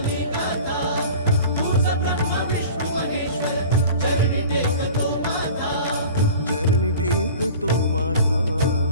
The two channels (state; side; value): inverted; both; correlation -0.41